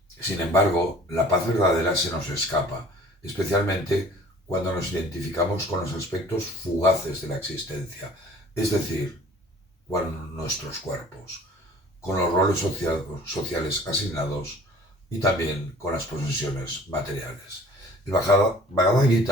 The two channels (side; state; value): both; normal; correlation 0.49